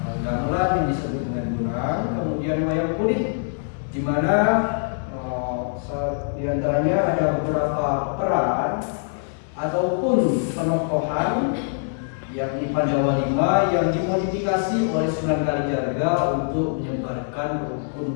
gamelan yang disebut dengan Bonang, kemudian wayang kulit, di mana di antaranya ada beberapa peran ataupun penokohan yakni Pandawa V yang dimodifikasi oleh Sunan Kalijaga untuk menyebarkan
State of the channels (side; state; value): right; silent; digital silence